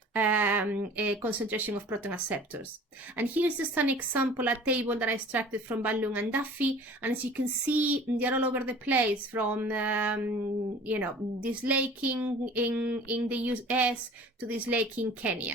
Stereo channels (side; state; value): both; normal; correlation 0.46